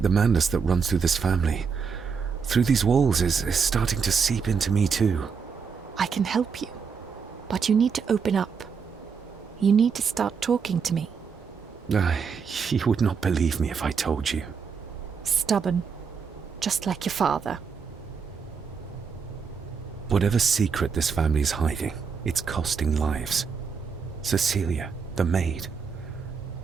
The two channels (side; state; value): left; quieter; 6.0 dB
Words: the madness that runs through this family, through these walls, is starting to seep into me too. I can help you, but you need to open up. You need to start talking to me. You would not believe me if I told you. Stubborn, just like your father. Whatever secret this family is hiding, it's costing lives. Cecilia, the maid,